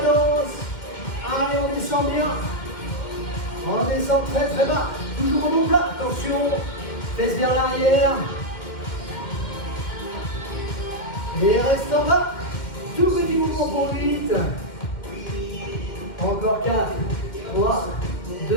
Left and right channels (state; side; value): late; right; 2.1 ms